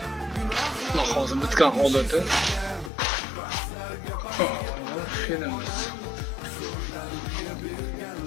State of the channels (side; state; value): right; drops out; at 2.9 s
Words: Xudo xohlasa bitgan holati. Fenimiz.